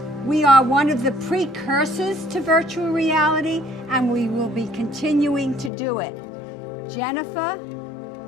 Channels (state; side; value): drops out; right; at 5.7 s